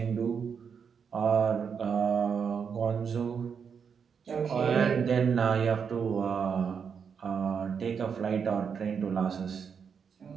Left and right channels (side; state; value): left; quieter; 6.6 dB